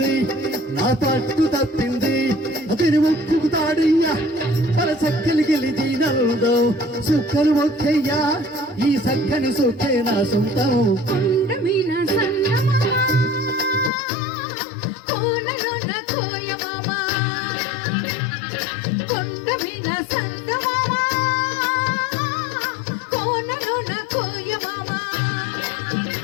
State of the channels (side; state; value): right; drops out; at 13.9 s